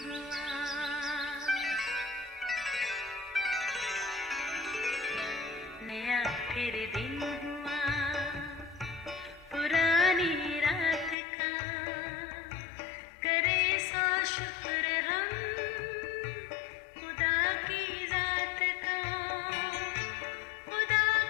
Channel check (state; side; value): drops out; right; at 11.2 s